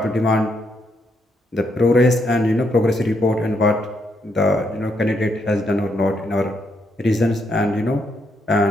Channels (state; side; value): normal; both; correlation 0.77